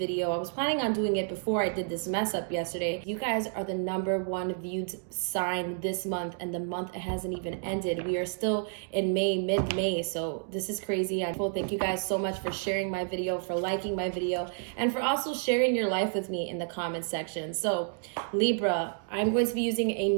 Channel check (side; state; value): left; silent; 58 dB below the other